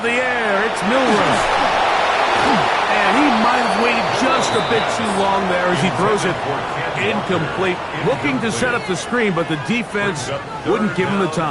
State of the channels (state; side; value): identical; both; correlation 1.00